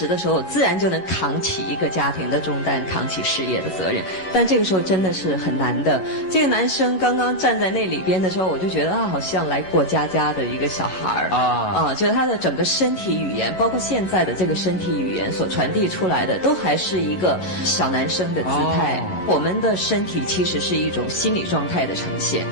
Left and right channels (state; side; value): late; right; 11 ms